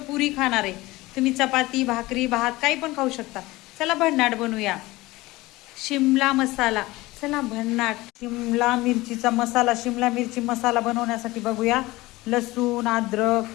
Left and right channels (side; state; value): right; quieter; 19.9 dB